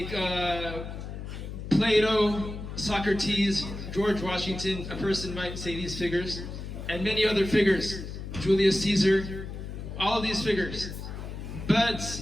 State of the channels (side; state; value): left; noise; hum, 8 dB below the sound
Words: Plato, Socrates, George Washington, a person might say these figures, and many other figures, Julius Caesar, all of these figures. But